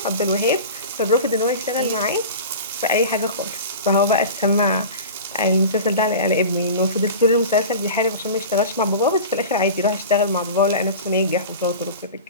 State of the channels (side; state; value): both; inverted; correlation -0.34